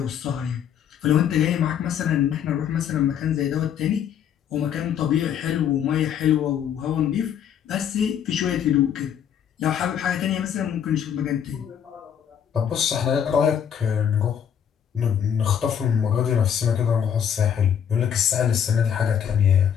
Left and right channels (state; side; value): quieter; right; 8.7 dB